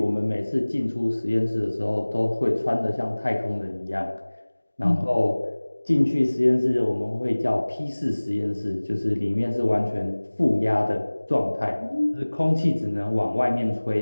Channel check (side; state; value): both; inverted; correlation -1.00